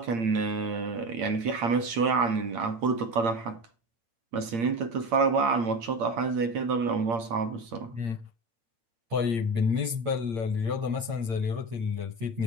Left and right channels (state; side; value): late; left; 8.7 ms